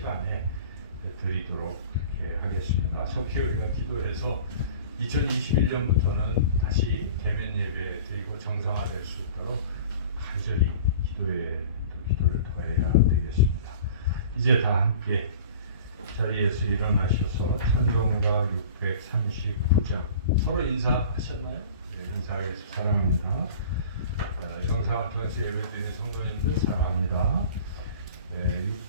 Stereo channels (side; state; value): both; inverted; correlation -0.42